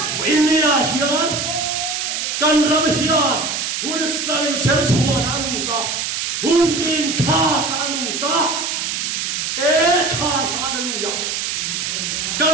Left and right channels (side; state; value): right; noise; hiss, 2 dB below the sound